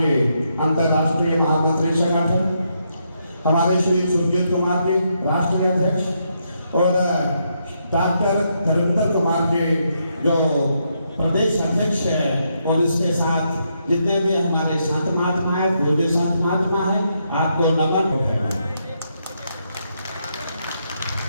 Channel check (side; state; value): both; inverted; correlation -0.79